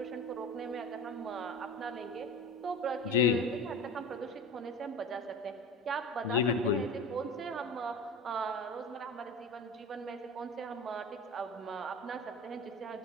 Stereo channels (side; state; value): both; normal; correlation 0.32